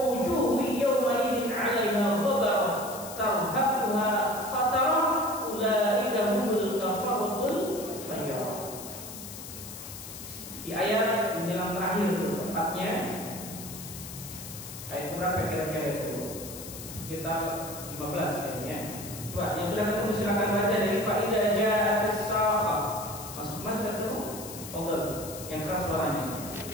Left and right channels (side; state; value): left; noise; hiss, 11 dB below the sound